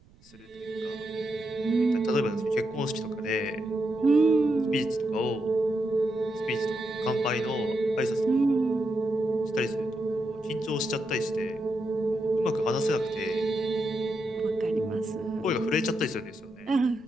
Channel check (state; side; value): noise; right; rumble, 28 dB below the sound